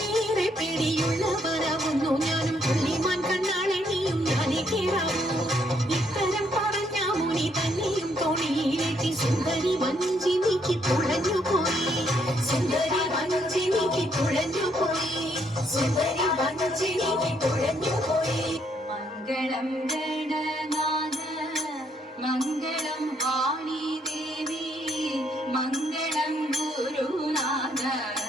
പേടിയുള്ളവരാവുന്നു ഞാനും പുള്ളിമാൻ കണ്ണാളെണിയും ഞാനേ കേറാവൂ. ഇത്തരം പറഞ്ഞ മുനി തന്നെയും തോണിയിലേറ്റി സുന്ദരി വഞ്ചി നീക്കി തുഴഞ്ഞു പോയി. സുന്ദരി വഞ്ചി നീക്കി തുഴഞ്ഞു പോയി. സുന്ദരി വഞ്ചി നീക്കി തുഴഞ്ഞു പോയി. മംഗളം ഗണനാഥ മംഗളം വാണി ദേവി മംഗളം ഗുരുനാഥ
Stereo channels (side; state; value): both; normal; correlation 0.72